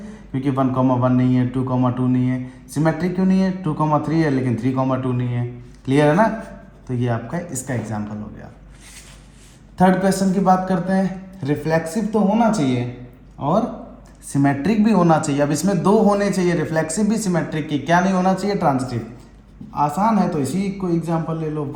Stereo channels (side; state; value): both; identical; correlation 1.00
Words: क्योंकि 1,1 नहीं है, 2,2 नहीं है। सिमेट्रिक क्यों नहीं है? 2,3 है लेकिन 3,2 नहीं है। क्लियर है ना? तो ये आपका इसका एग्जाम्पल हो गया। थर्ड क्वेश्चन की बात करते हैं। रिफ्लेक्सिव तो होना चाहिए और सिमेट्रिक भी होना चाहिए। अब इसमें 2 होने चाहिए, रिफ्लेक्सिव भी सिमेट्रिक की। क्या नहीं होना चाहिए? ट्रांजिटिव। आसान है, तो इसी को एग्जाम्पल ले लो,